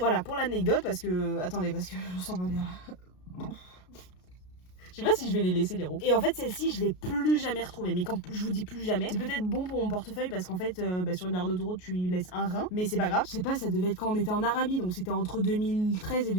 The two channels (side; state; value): right; late; 33 ms